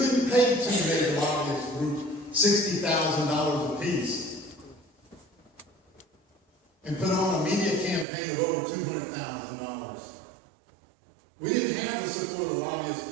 pay two major lobbyist groups $60,000 apiece and put on a media campaign of over $200,000. We didn't have the support of the lobbyists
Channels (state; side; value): drops out; left; at 8.1 s